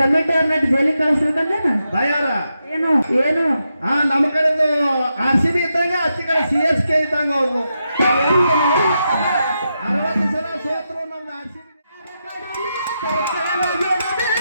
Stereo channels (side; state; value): both; inverted; correlation -0.86